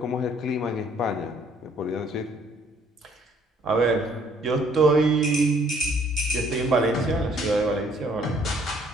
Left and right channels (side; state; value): both; normal; correlation 0.62